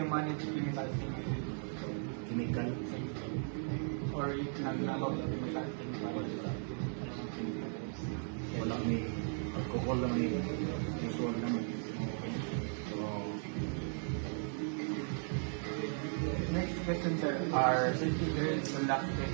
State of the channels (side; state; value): left; silent; 53 dB below the other